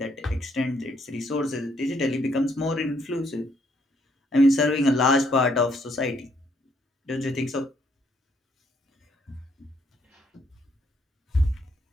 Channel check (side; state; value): both; normal; correlation 0.70